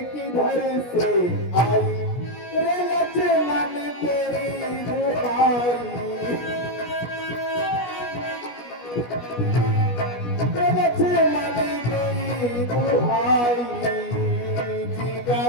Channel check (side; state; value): right; late; 17 ms